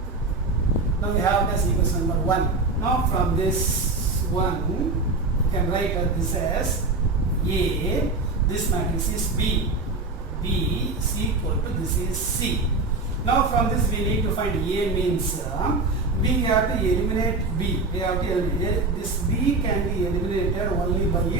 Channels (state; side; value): quieter; left; 3.5 dB